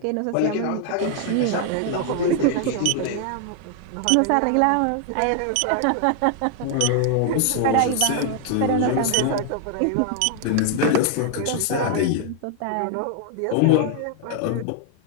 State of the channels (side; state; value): both; different; correlation 0.00